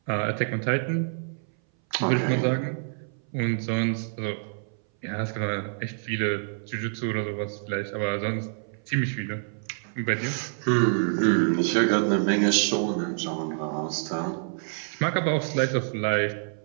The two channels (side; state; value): left; silent; 59 dB below the other